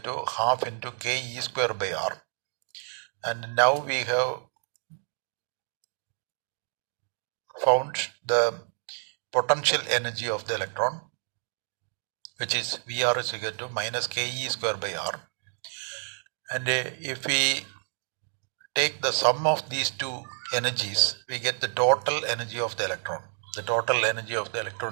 half into ke square by r, and now we have found the potential energy of the electron, which is Vr is equal to minus ke square by r, and if we take the sum of these two energies, we get the total energy of the electron. The total energy of the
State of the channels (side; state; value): left; silent; 59 dB below the other